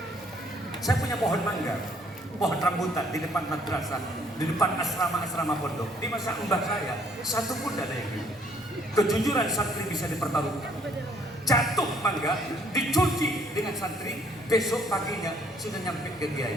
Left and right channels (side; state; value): both; normal; correlation 0.63